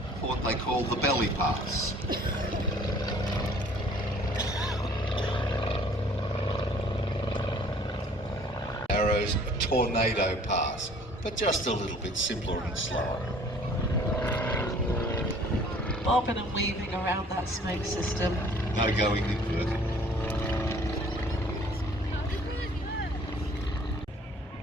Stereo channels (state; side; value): normal; both; correlation 0.54